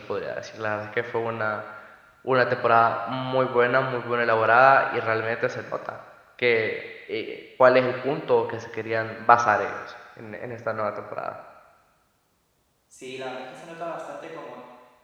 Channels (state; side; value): identical; both; correlation 1.00